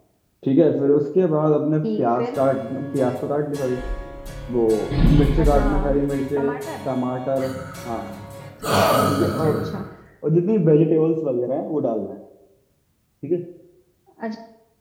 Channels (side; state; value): both; identical; correlation 1.00